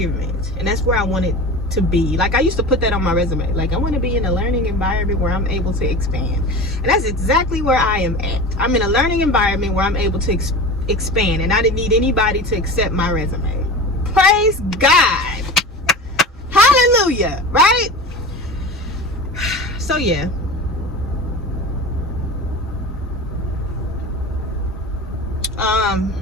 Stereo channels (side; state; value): both; normal; correlation 0.31